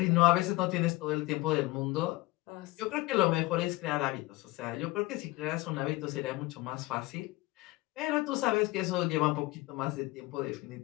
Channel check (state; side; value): quieter; right; 20.7 dB